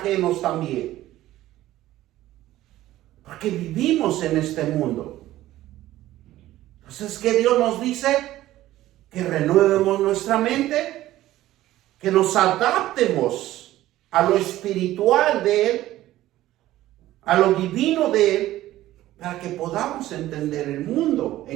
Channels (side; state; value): left; quieter; 15.0 dB